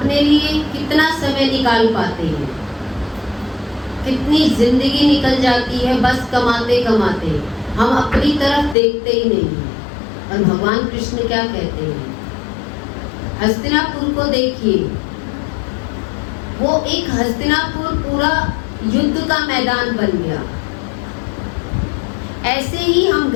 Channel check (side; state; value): right; drops out; at 8.8 s